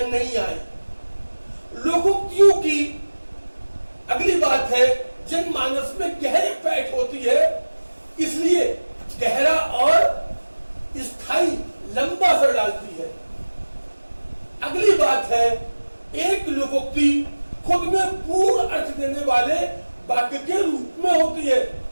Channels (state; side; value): inverted; both; correlation -1.00